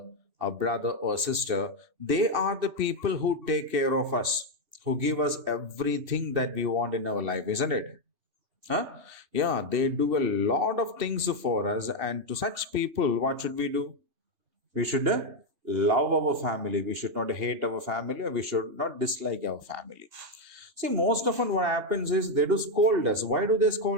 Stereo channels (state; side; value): late; left; 2.7 ms